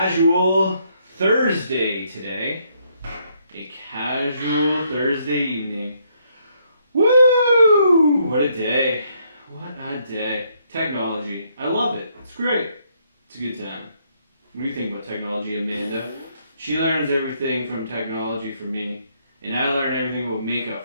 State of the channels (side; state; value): both; inverted; correlation -0.72